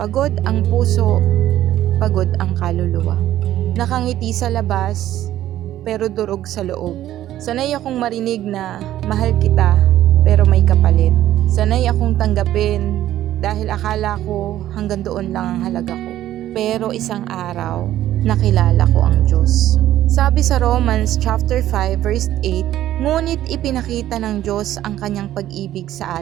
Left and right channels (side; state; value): left; quieter; 13.1 dB